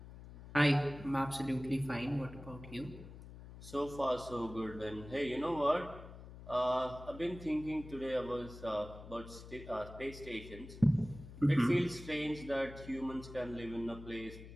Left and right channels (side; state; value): left; noise; hum, 15 dB below the sound